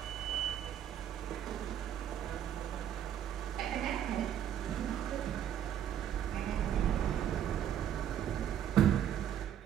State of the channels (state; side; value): quieter; left; 10.0 dB